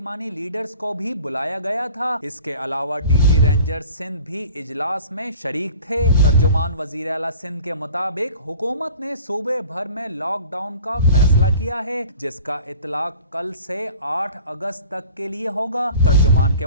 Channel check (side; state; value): both; inverted; correlation -0.46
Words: لیڈرز کو بھی بلایا گیا تھا۔ اس کے علاوہ ڈی جی رینجر سندھ بھی اجلاس میں شریک تھے۔ ترجمان وزیر اعلیٰ سندھ کے مطابق حکومت نے صوبے بھر میں لاک ڈاؤن کا فیصلہ کیا ہے، جس کا اطلاق کل سے 8 اگست تک کے لیے ہوگا۔ ترجمان کے